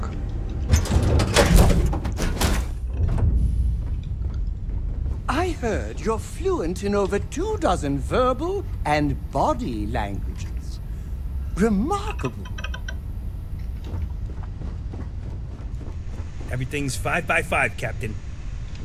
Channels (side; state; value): both; identical; correlation 1.00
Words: I heard you're fluent in over 24 verbal and body languages. Remarkable. Everything's 5 by 5, Captain.